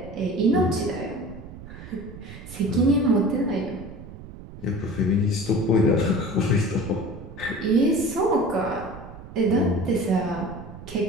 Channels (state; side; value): noise; right; rumble, 14 dB below the sound